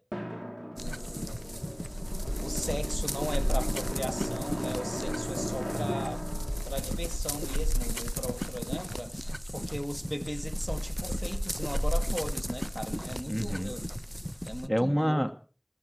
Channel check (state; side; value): identical; both; correlation 1.00